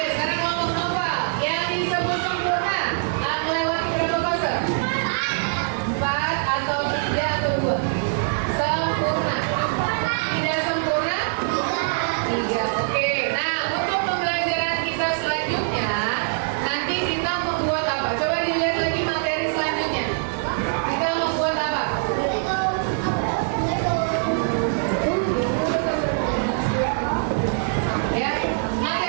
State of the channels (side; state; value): left; silent; 63 dB below the other